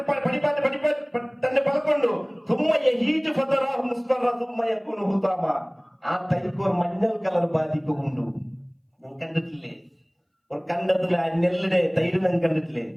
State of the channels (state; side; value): identical; both; correlation 1.00